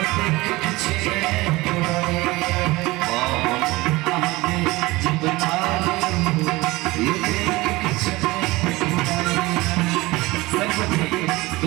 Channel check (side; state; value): left; quieter; 20.9 dB